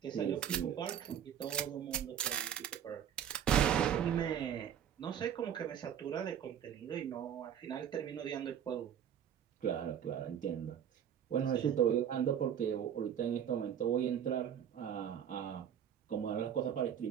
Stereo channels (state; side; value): quieter; left; 9.1 dB